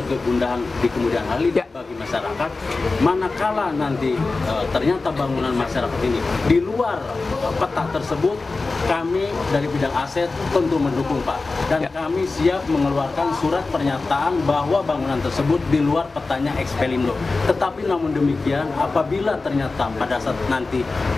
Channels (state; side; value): quieter; right; 3.7 dB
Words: kegundahan di kemudian hari bagi masyarakat. Manakala nanti ternyata bangunan masyarakat ini di luar peta tersebut, kami dari bidang aset tentu mendukung, Pak. Dan kami siap mengeluarkan surat pernyataan bahwa bangunan tersebut di luar petanya ekspelindo. Tetapi namun demikian, apabila ternyata pada saat nanti